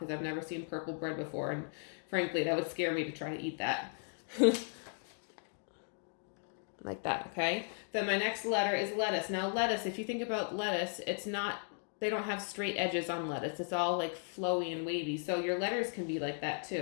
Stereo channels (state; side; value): silent; right; 54 dB below the other